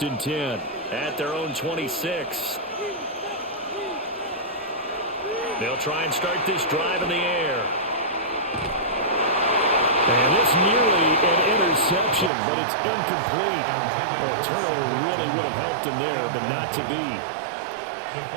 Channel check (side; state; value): left; drops out; at 12.3 s